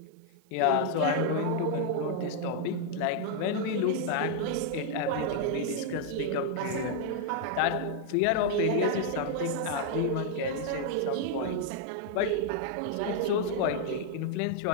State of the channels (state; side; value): different; both; correlation 0.00